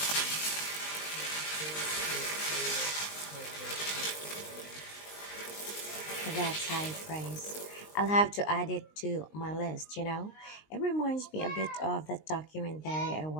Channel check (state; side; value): late; right; 19 ms